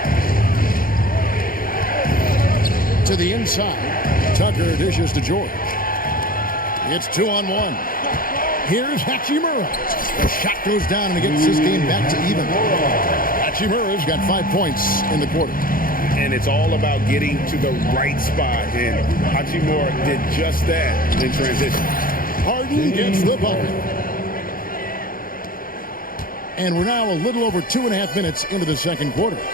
To the inside. Tucker dishes to George. It's 2-on-1. Here's Hachimura. The shot goes down and it gets this game back to even. Hachimura's got 5 points in the quarter. And it's all about getting to the right spot. And Hachimura did just that in transition. Harden gets the bucket. And we're now a little over 2.5 minutes into the second quarter.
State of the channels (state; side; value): late; right; 0.41 ms